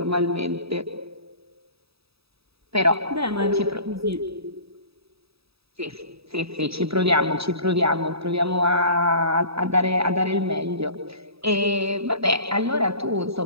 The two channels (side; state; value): left; late; 0.77 ms